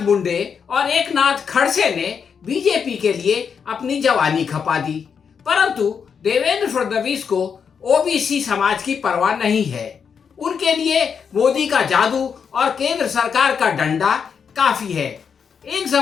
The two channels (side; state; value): right; quieter; 6.7 dB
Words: मुंडे और एकनाथ खड़से ने बीजेपी के लिए अपनी जवानी खपा दी, परंतु देवेंद्र फडणवीस को ओबीसी समाज की परवाह नहीं है। उनके लिए मोदी का जादू और केंद्र सरकार का डंडा काफी है। एक